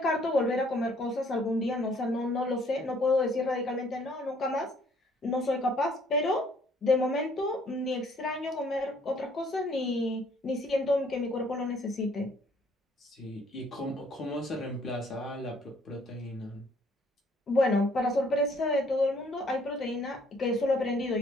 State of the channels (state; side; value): normal; both; correlation 0.62